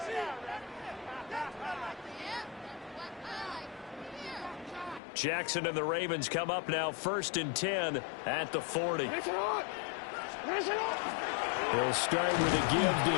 Jackson and the Ravens come up now 1st and 10 at the 40. They'll start with a give to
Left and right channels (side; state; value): right; drops out; at 5.0 s